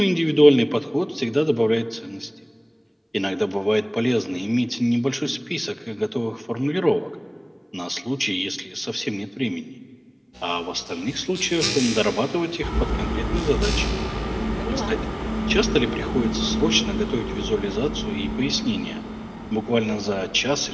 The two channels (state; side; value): identical; both; correlation 1.00